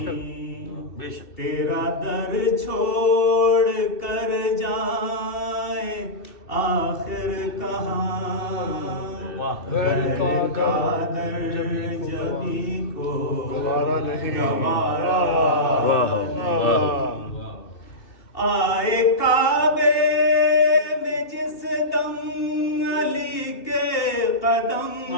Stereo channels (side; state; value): right; late; 2.7 ms